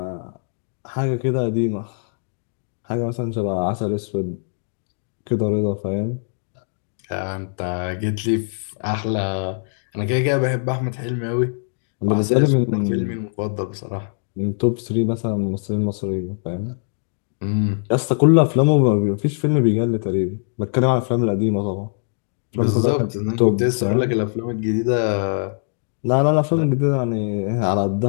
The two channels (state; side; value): silent; right; digital silence